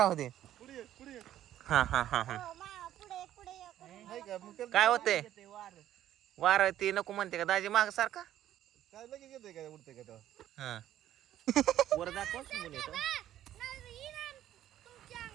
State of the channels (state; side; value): quieter; left; 12.2 dB